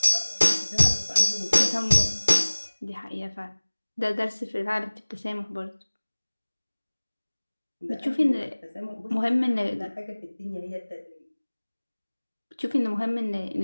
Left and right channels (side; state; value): both; inverted; correlation -1.00